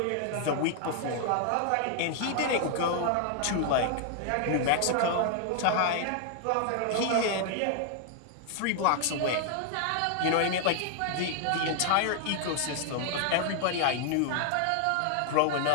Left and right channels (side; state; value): both; different; correlation 0.00